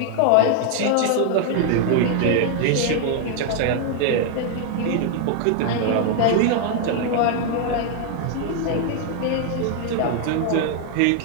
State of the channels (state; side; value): different; both; correlation 0.00